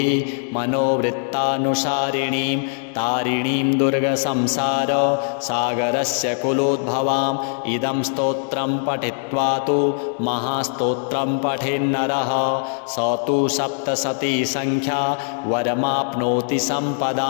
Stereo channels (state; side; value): silent; right; 65 dB below the other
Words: मनोवृत्तानुसारिणीं तारिणीं दुर्गसंसार सागरस्य कुलोद्भवाम् इदं स्तोत्रं पठित्वा तु महास्तोत्रं पठेन्नरः स तु सप्तशती संख्या वरमाप्नोति